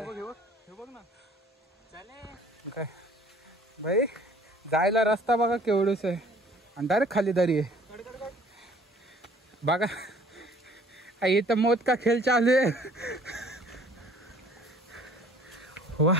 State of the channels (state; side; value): normal; both; correlation 0.54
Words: बघ ना काय भाई, जायला रस्ता बघा केवढूच आहे आणि डायरेक्ट खाली दरी आहे बघा। इथं मौत का खेळ चालू आहे।